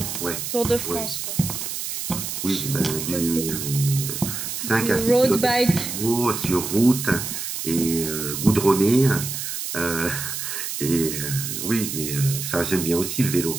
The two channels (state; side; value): noise; right; hiss, 5 dB below the sound